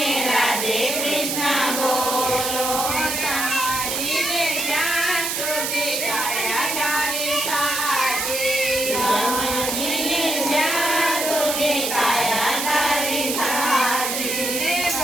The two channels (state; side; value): noise; right; hiss, 1 dB below the sound